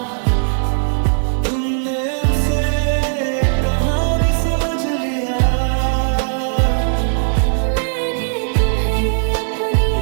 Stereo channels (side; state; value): left; silent; digital silence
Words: तुमने उसे कहानी समझ लिया। मैंने तुम्हें अपनी